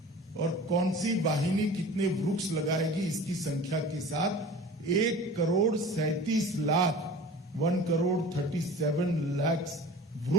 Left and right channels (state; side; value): normal; both; correlation 0.40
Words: और कौन सी वाहिनी कितने वृक्ष लगाएगी, इसकी संख्या के साथ 1,37,00,000 1,37,00,000